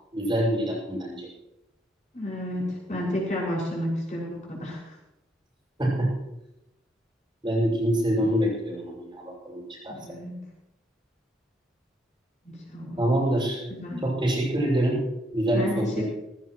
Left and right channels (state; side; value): normal; both; correlation 0.73